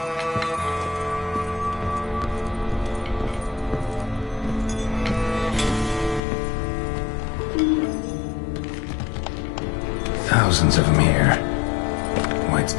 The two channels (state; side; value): drops out; right; at 6.2 s